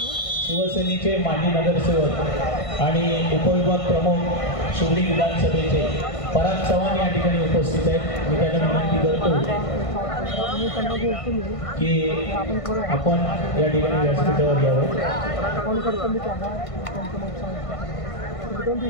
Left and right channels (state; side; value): late; right; 1.5 ms